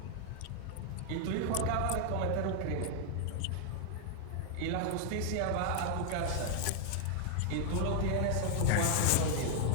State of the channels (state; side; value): different; both; correlation 0.00